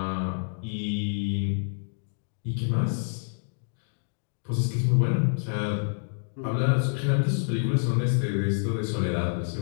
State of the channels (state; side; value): silent; right; digital silence